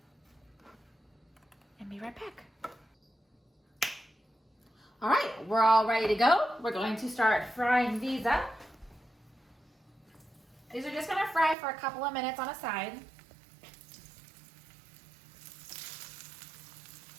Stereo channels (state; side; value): drops out; left; at 11.6 s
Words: And be right back. All right, we're all ready to go. We're going to start frying these up. These are just gonna fry for a couple of minutes on a side.